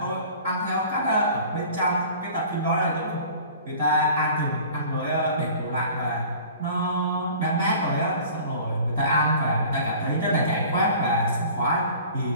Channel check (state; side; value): inverted; both; correlation -0.45